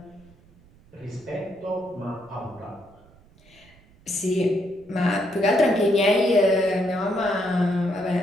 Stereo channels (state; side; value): noise; right; rumble, 27 dB below the sound